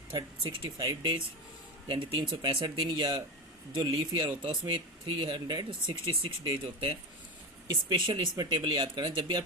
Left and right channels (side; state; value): both; normal; correlation 0.19